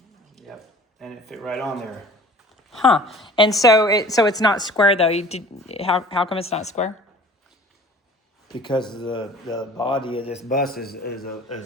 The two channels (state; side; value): normal; both; correlation 0.47